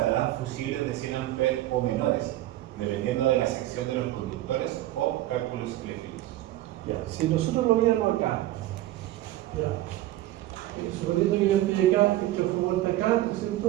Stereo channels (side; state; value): left; quieter; 15.2 dB